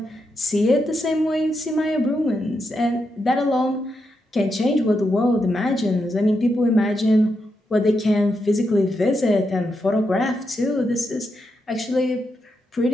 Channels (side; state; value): both; normal; correlation 0.84